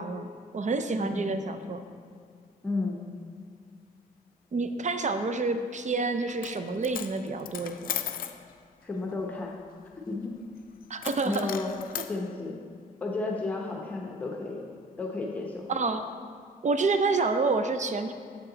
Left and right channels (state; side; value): normal; both; correlation 0.45